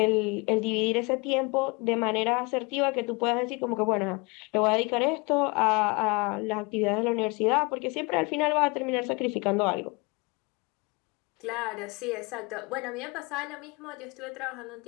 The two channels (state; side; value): quieter; right; 28.4 dB